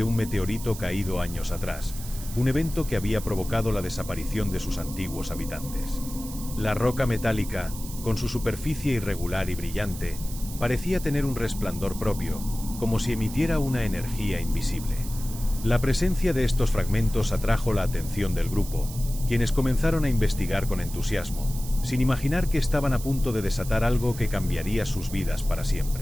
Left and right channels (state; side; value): noise; right; hiss, 13 dB below the sound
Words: un meteorito caído años atrás, un evento que había provocado la desaparición de sus antiguos habitantes. La roca metálica, con su superficie irregular y brillante, parecía tener un resplandor propio, como si emitiera una energía invisible. La presencia de estos fragmentos atrajo la atención del grupo, quienes comenzaron a investigar con entusiasmo, sin imaginar que estaban a punto de desatar algo que cambiaría sus vidas para